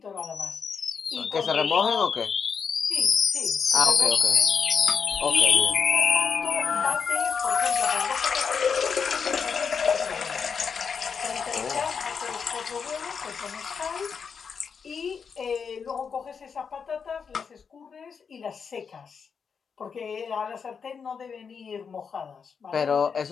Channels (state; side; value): quieter; right; 6.2 dB